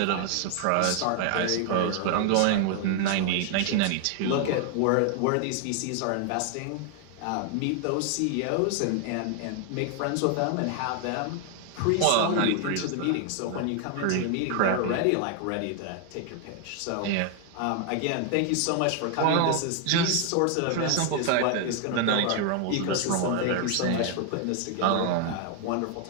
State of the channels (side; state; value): both; different; correlation 0.00